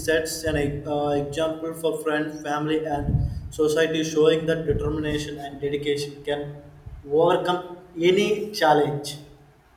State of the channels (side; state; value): both; identical; correlation 1.00